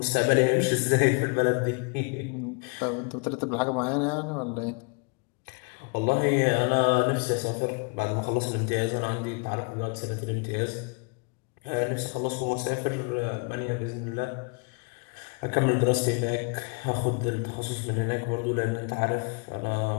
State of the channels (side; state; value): right; quieter; 32.4 dB